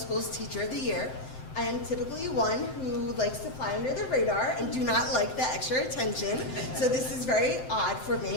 Teacher of the Year. I am typically one who likes to fly under the radar and do not like the extra attention, so this is very odd for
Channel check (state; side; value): late; right; 7.8 ms